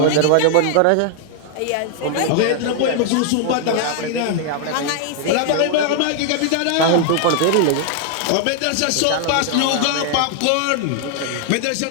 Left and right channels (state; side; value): different; both; correlation 0.00